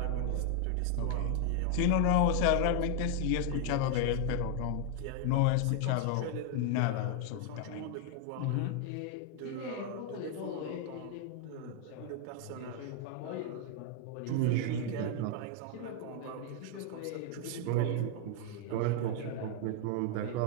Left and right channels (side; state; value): both; different; correlation 0.00